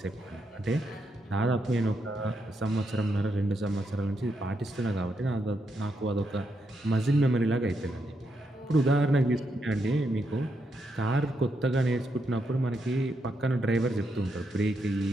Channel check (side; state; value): both; normal; correlation 0.81